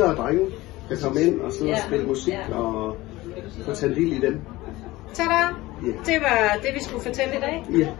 og drenge, der kom ind og sidde og spille musik og få tage del i dem. Tada! Det var det, vi skulle fortælle i dag.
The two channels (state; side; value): quieter; right; 19.0 dB